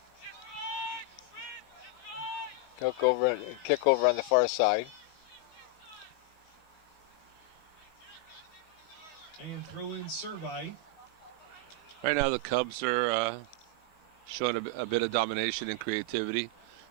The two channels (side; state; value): right; late; 16 ms